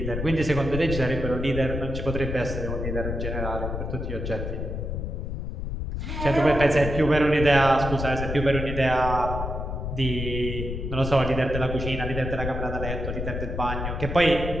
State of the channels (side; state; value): left; noise; rumble, 4 dB below the sound